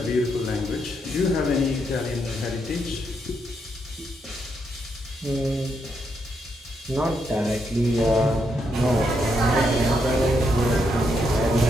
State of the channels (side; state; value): both; normal; correlation 0.79